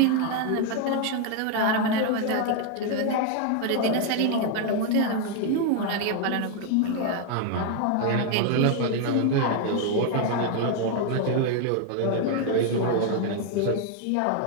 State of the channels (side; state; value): both; different; correlation 0.00